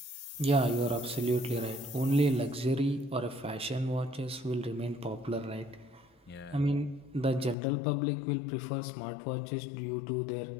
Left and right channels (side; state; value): right; drops out; at 7.6 s